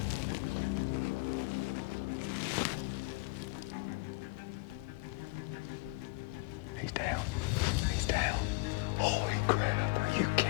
He's down. He's down. Holy crap, are you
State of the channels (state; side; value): quieter; right; 25.2 dB